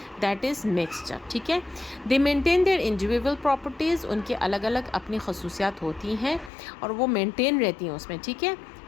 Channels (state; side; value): drops out; right; at 6.5 s